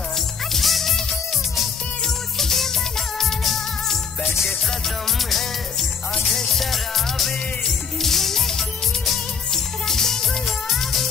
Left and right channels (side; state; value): right; quieter; 6.1 dB